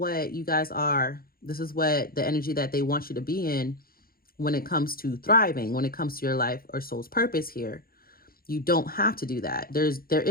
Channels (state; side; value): late; right; 0.43 ms